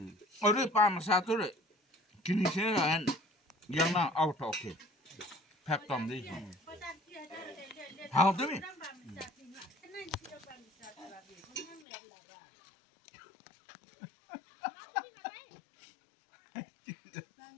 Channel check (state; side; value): drops out; right; at 11.9 s